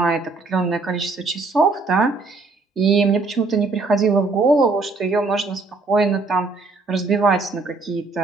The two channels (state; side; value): quieter; left; 3.8 dB